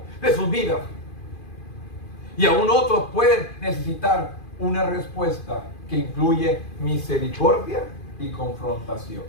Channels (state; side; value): late; right; 2.5 ms